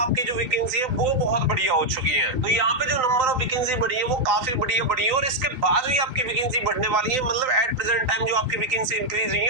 जो वैकेंसी है वो बहुत बढ़िया हो चुकी है। तो यहाँ पे जो नंबर ऑफ वैकेंसी बढ़ी है वो काफी बढ़ी है और इसके बाद भी आपकी वैकेंसी बढ़ने वाली है। मतलब एट प्रेजेंट टाइम जो आपकी वैकेंसी इंक्रीज हुई है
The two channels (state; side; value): late; left; 2.7 ms